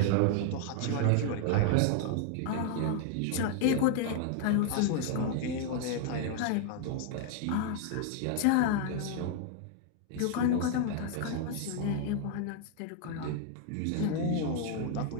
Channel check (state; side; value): different; both; correlation 0.00